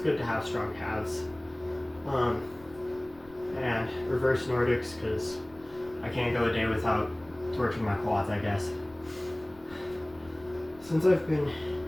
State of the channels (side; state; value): left; noise; rumble, 24 dB below the sound